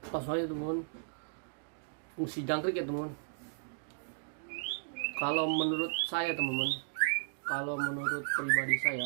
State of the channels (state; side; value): silent; left; digital silence